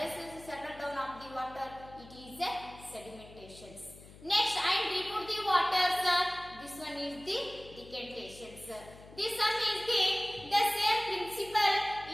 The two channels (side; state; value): left; noise; hum, 19 dB below the sound